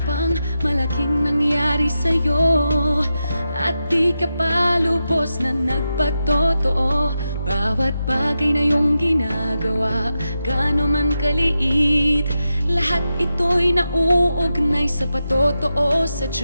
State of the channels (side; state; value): both; inverted; correlation -0.89